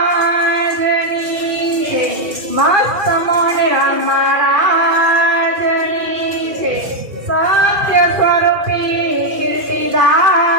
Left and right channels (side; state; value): left; late; 2.4 ms